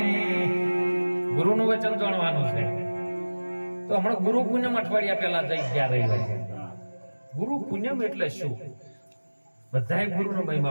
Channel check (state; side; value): inverted; both; correlation -1.00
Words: ગુરુનું વચન જાણવાનું છે. તો હમણાં ગુરુ પૂનમ અઠવાડિયા પહેલા જઈ ગયા રહ્યા છે. ગુરુ પૂનમ એટલે શું? બધાએ ગુરુનો